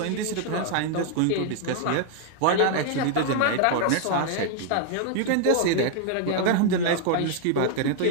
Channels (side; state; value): both; different; correlation 0.00